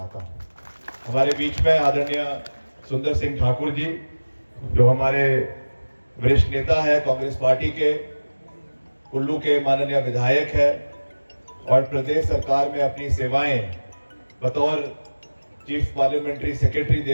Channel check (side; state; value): both; inverted; correlation -1.00